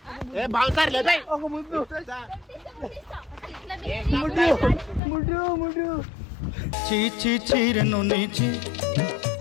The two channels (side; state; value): right; drops out; at 5.0 s